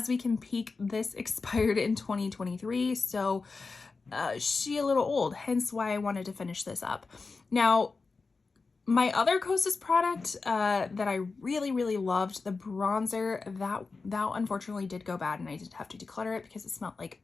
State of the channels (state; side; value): quieter; right; 4.2 dB